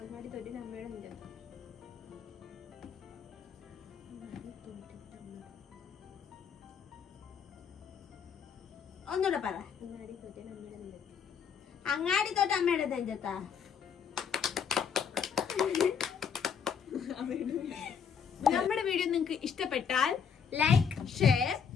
തോറ്റതിന് അമ്മയുടെ നെഞ്ചത്ത്. ഒന്നുകൂടെ പറ. അങ്ങാടി തോറ്റതിന് അമ്മയുടെ നെഞ്ചത്ത്. അങ്ങാടി തോറ്റ അമ്മയുടെ നെഞ്ചത്താ. നമ്മുടെ വീഡിയോ നിങ്ങൾക്ക് ഇഷ്ടപ്പെട്ടാൽ ലൈക്ക് ഷെയർ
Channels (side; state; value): right; quieter; 7.0 dB